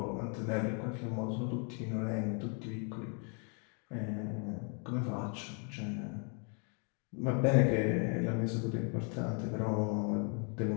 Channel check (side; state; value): right; quieter; 38.5 dB